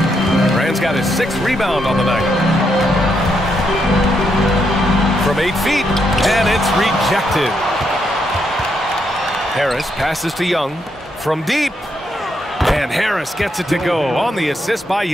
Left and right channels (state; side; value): normal; both; correlation 0.79